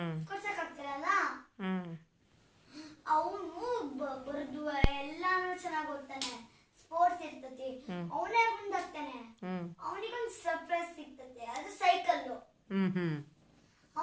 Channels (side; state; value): both; identical; correlation 1.00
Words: ಕೊಡ್ಸಕ್ ಆಗ್ತಿರಲ್ಲ. ಅವನು ಬರ್ದು ಎಲ್ಲಾನು ಚೆನ್ನಾಗಿ ಓದ್ತಾನೆ, ಸ್ಪೋರ್ಟ್ಸ್ ಇರ್ತತಿ, ಅವನೇ ಮುಂದಾಗ್ತಾನೆ. ಅವನಿಗೊಂದು ಸರ್ಪ್ರೈಸ್ ಸಿಗ್ತತೆ, ಅದು ಸೈಕಲ್.